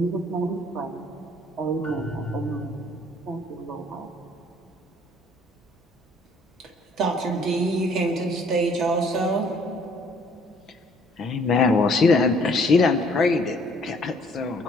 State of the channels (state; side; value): normal; both; correlation 0.60